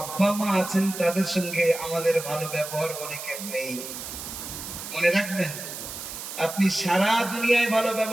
মা আছেন তাদের সঙ্গে আমাদের ভালো ব্যবহার অনেকের নেই। মনে রাখবেন, আপনি সারা দুনিয়ায় ভালো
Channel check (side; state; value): right; noise; hiss, 9 dB below the sound